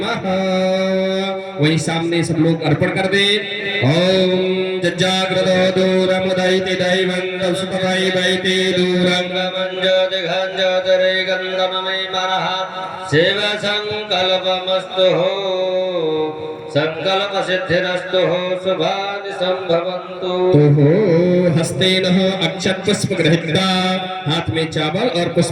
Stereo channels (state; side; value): identical; both; correlation 1.00